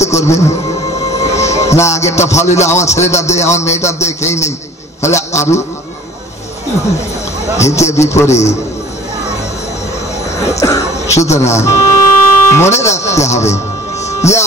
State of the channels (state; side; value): normal; both; correlation 0.49